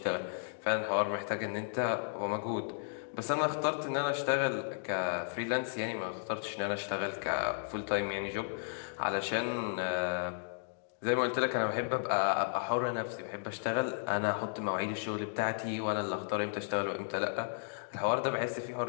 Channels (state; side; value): silent; right; digital silence